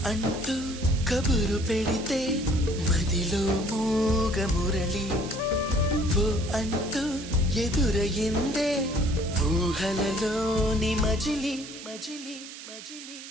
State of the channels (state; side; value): noise; right; hiss, 13 dB below the sound